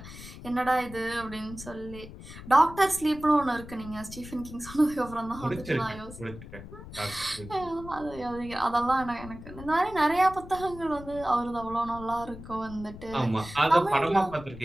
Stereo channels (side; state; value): left; noise; rumble, 14 dB below the sound